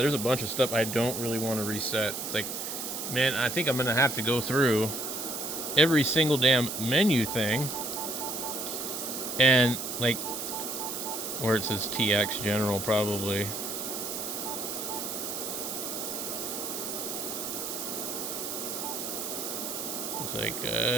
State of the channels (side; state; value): right; noise; hiss, 5 dB below the sound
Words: there's a bunch of stuff I don't really want to reset. It's like, man, I think I'm going to have to go through every single damn menu thing. And, like, where it says TX General, probably. It's like,